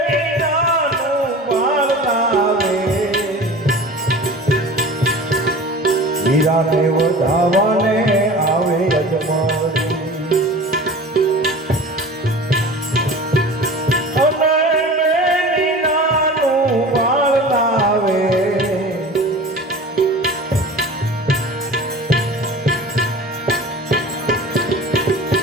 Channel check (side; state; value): both; normal; correlation 0.38